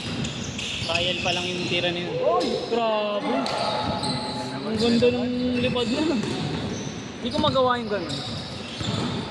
Trial pa lang yung tira niyo. Oy! Grabe! Ang ganda ng lipad na. Hindi ko magawa yung gano'n.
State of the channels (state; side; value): identical; both; correlation 1.00